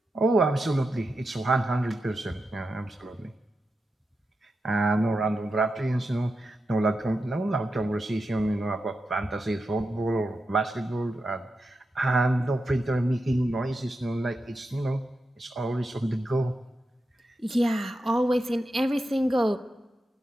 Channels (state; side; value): normal; both; correlation 0.89